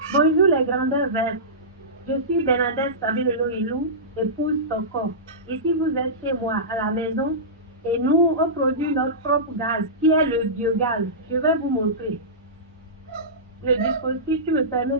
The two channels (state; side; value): normal; both; correlation -0.18